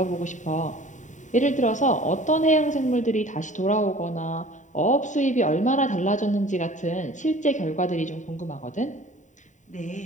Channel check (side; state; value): right; late; 0.36 ms